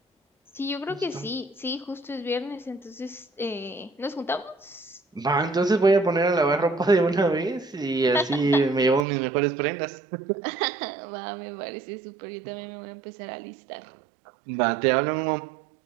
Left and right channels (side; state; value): left; drops out; at 9.1 s